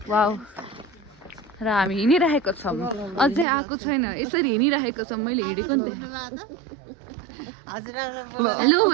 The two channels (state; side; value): drops out; left; at 3.5 s